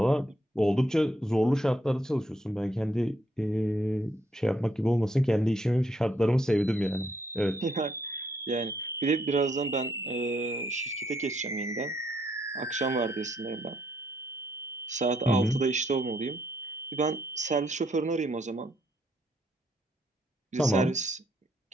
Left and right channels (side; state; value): both; normal; correlation 0.73